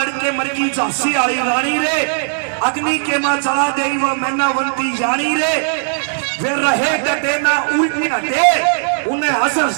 मरगी झांसी आली रानी रे। अग्नि के मां चढ़ा दे वो मैनावंती यानी रे। वे रहे डटे ना उल्टे हटे, उन्हें हंस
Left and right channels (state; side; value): silent; left; 66 dB below the other